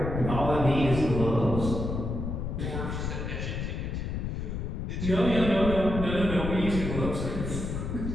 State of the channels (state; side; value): noise; left; rumble, 3 dB below the sound